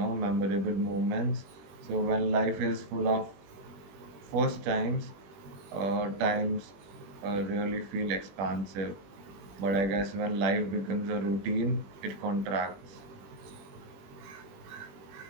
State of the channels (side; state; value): left; late; 20 ms